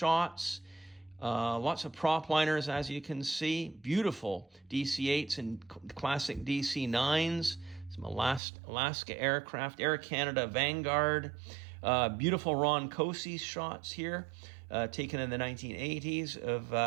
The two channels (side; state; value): left; drops out; at 8.4 s